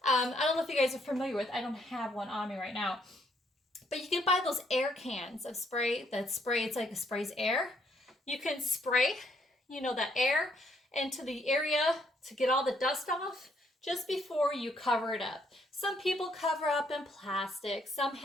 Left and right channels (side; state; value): both; normal; correlation 0.70